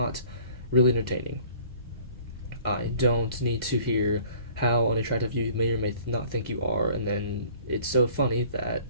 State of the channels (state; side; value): inverted; both; correlation -0.52